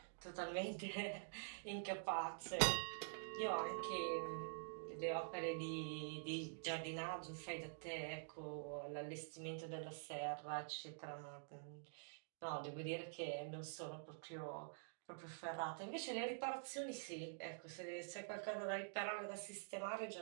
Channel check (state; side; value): silent; left; digital silence